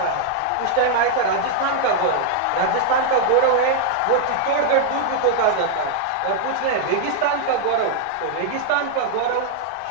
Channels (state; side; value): different; both; correlation 0.00